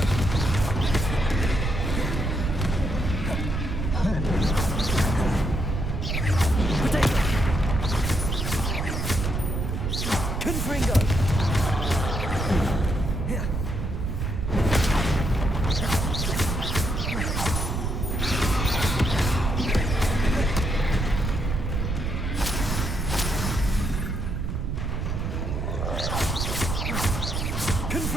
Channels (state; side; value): noise; right; rumble, 1 dB below the sound